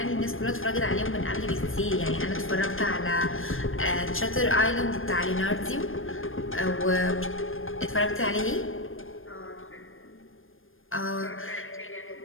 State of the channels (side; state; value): right; late; 0.59 ms